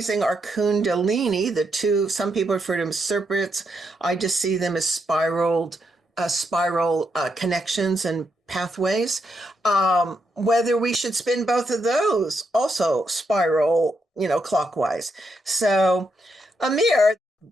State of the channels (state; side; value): normal; both; correlation 0.80